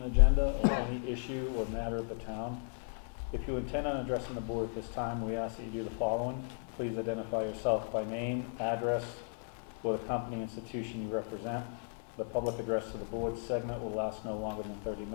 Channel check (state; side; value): silent; right; digital silence